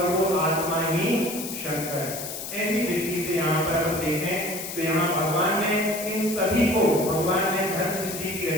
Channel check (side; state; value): left; noise; hiss, 8 dB below the sound